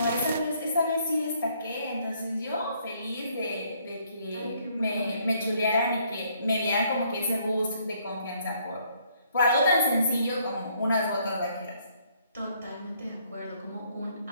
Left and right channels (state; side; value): inverted; both; correlation -0.67